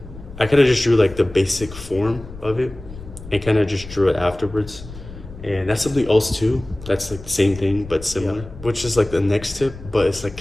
the basic form of it and kind of just drew it afterwards. And that's something else too. That's like the same thing but similar, which is like the next tip, but it's like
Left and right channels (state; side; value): noise; left; rumble, 15 dB below the sound